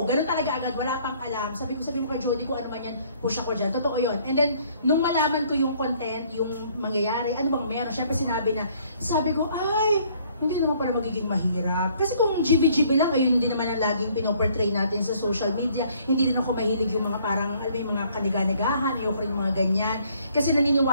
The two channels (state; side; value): inverted; both; correlation -0.62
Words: Ganun talaga agad, wala pang alam. Sabi mo kay Jody kung ano man yan, push ako dyan. Totoo yun. And then, nung malaman ko yung content, yung mangyayari, ano bang meron, syempre sabi ko, ay, hindi naman pala magiging mahirap. Kasi kung GB-GB lang, ayun hindi naman ang laging pinoportray natin sa social media. Hindi rin ako mahilig yung mga parang, yung mga kaniga-nigahan, ayoko rin yung mga ganyan. Kasi